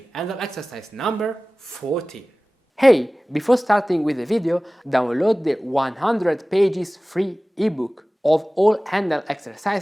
Handel exercise number 14. Hey, before starting with the video, download the 100 pages free ebook of all Handel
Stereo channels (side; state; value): both; normal; correlation 0.98